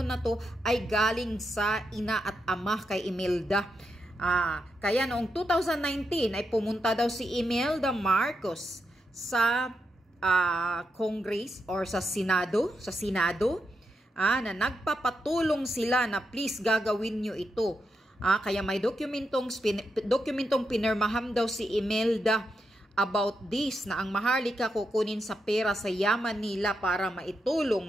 na to ay galing sa ina at ama kay Imelda. Kaya noong 2019 ay pumunta daw si Imelda Marcos sa Congress or sa Senado, na nagpapatulong sila na please gagawin nyo ito. Kaya may dokumentong pinirmaham daw si Imelda about this na ang Maharlika kukunin sa pera sa yaman nila para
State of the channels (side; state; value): both; normal; correlation 0.84